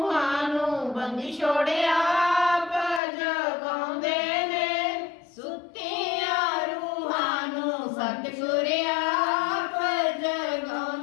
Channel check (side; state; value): right; drops out; at 3.0 s